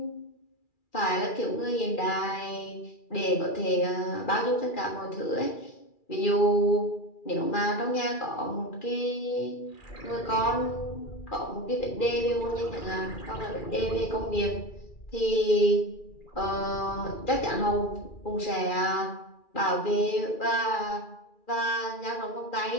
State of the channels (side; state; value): right; late; 2.4 ms